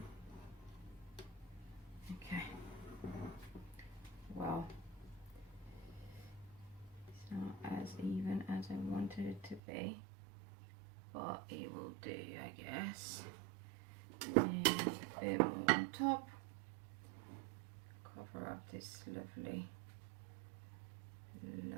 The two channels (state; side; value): drops out; left; at 9.6 s